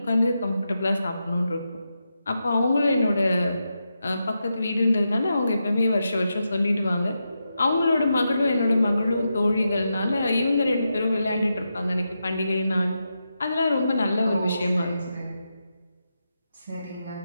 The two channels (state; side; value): inverted; both; correlation -0.87